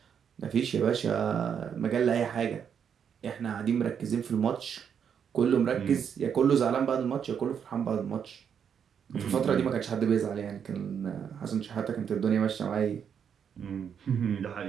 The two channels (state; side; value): quieter; left; 7.7 dB